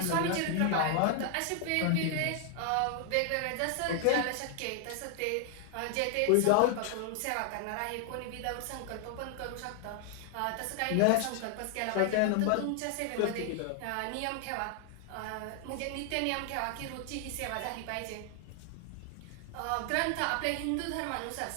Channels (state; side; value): different; both; correlation 0.00